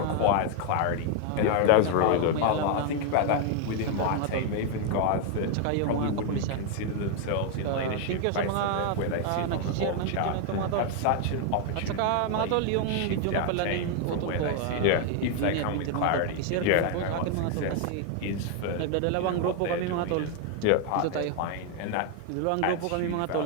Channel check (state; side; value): different; both; correlation 0.00